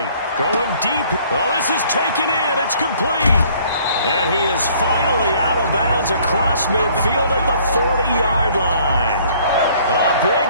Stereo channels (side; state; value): both; inverted; correlation -0.59